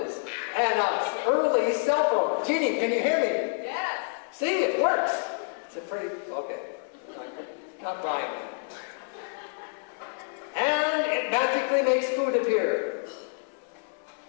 and an early cell phone. Jeannie, can you hear me? Yes. See, it works. It's a pretty, okay, not buying it. And it magically makes food appear.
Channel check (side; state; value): right; silent; digital silence